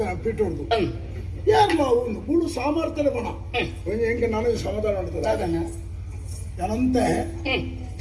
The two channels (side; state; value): both; identical; correlation 1.00